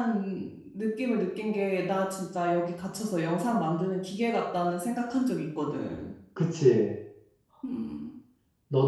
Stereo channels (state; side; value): identical; both; correlation 1.00